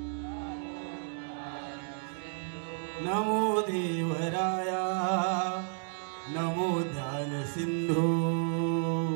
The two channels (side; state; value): left; silent; 56 dB below the other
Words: नमो देवराया नमो ध्यान सिंधू